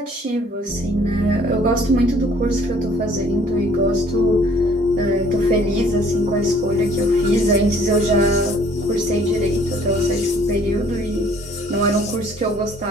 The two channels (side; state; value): both; normal; correlation 0.57